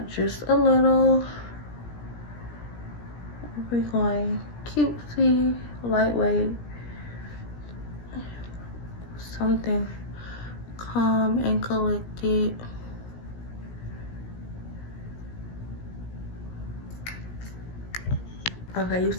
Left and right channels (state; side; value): late; right; 17 ms